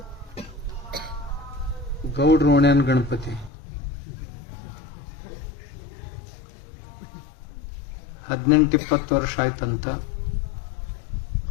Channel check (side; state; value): right; drops out; at 3.5 s